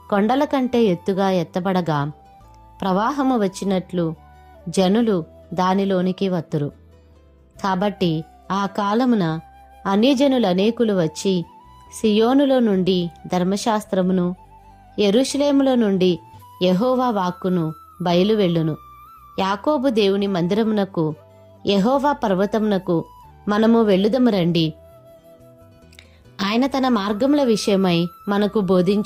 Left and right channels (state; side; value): identical; both; correlation 1.00